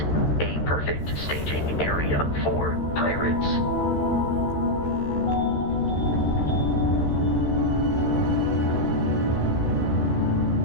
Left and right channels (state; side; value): late; right; 13 ms